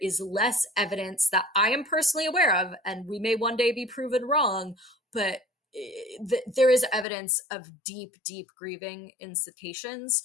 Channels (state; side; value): drops out; right; at 7.1 s